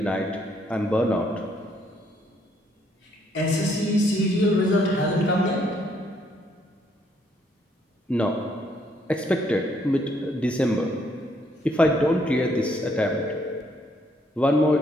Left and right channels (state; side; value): normal; both; correlation 0.70